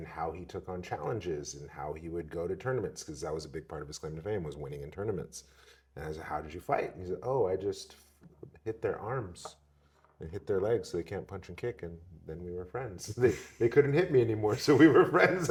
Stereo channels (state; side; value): identical; both; correlation 1.00